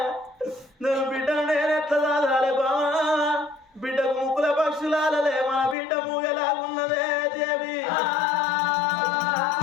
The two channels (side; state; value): right; drops out; at 5.8 s